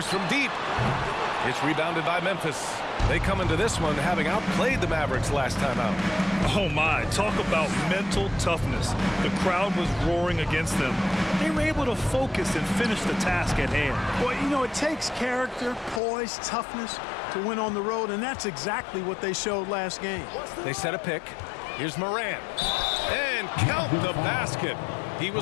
from deep. It's rebounded by Memphis. They come into this one having outplayed the Mavericks last time out. Oh my, talk about mental toughness. The crowd was roaring against them. They were able to focus and finish the task at hand. Well, you know, it takes character, poise, toughness to win on the road, and that's exactly what they showed last game. They set a pick. Here's Morant. And count the basket. He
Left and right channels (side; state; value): right; drops out; at 16.0 s